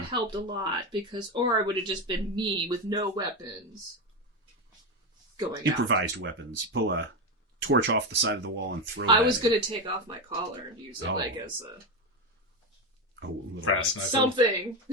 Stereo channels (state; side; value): normal; both; correlation 0.14